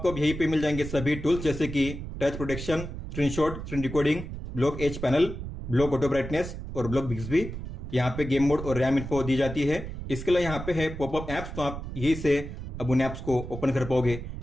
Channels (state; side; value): noise; right; rumble, 8 dB below the sound